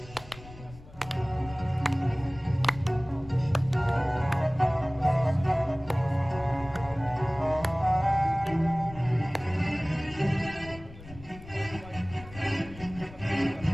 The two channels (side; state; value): left; noise; rumble, 17 dB below the sound